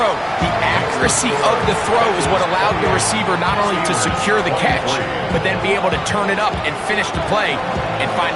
The accuracy of the throw is what allowed the receiver not only to secure the catch, but then be able to turn it up and finish the play and find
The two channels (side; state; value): both; identical; correlation 1.00